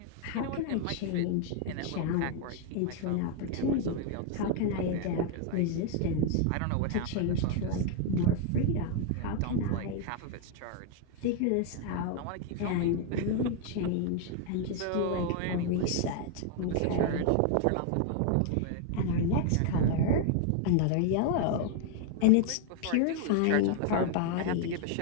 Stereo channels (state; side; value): different; both; correlation 0.00